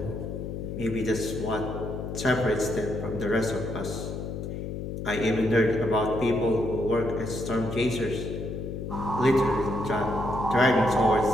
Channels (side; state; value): left; noise; hum, 6 dB below the sound